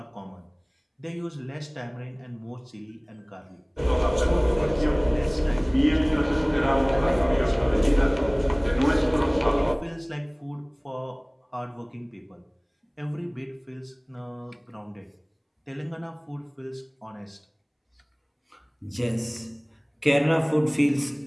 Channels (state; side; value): identical; both; correlation 1.00